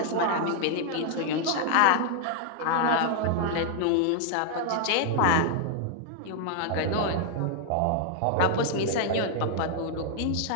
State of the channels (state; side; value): different; both; correlation 0.00